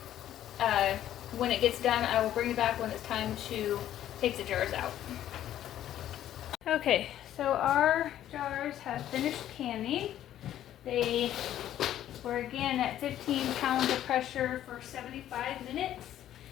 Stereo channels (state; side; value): quieter; right; 11.9 dB